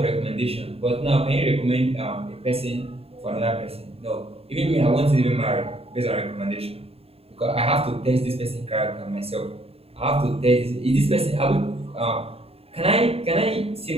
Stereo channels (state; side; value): late; left; 0.28 ms